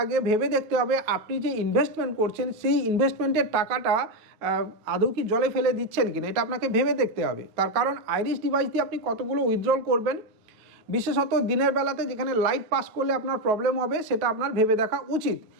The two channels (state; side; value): late; left; 9.3 ms